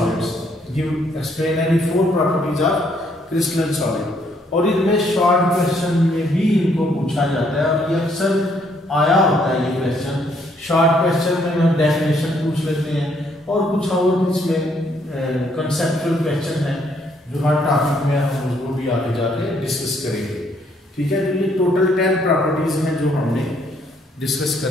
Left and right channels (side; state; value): both; normal; correlation 0.69